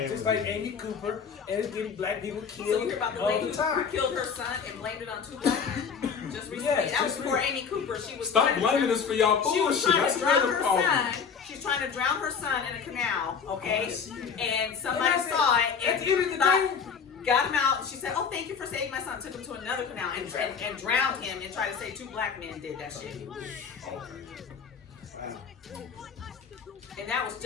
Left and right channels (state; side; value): quieter; right; 6.4 dB